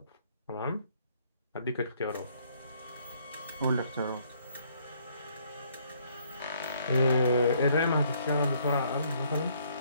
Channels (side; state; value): both; inverted; correlation -0.66